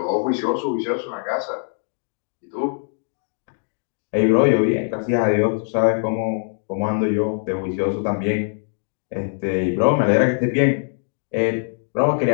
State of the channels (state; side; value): silent; right; 64 dB below the other